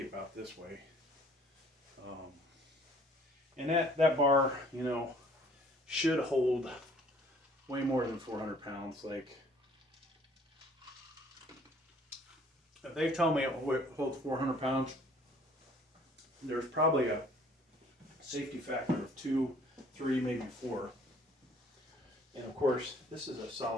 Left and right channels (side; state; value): both; normal; correlation 0.57